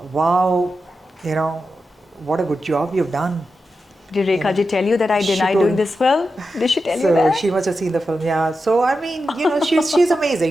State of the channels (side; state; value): both; normal; correlation 0.89